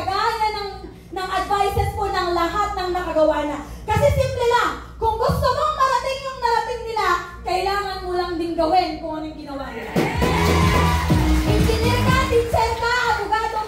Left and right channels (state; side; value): identical; both; correlation 1.00